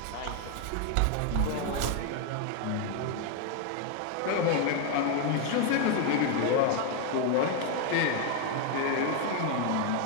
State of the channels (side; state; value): both; different; correlation 0.01